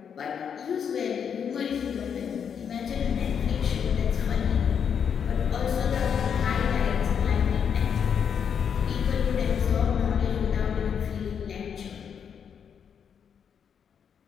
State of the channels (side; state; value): right; quieter; 7.5 dB